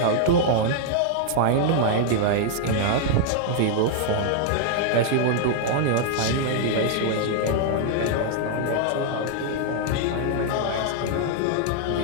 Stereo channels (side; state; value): both; different; correlation -0.01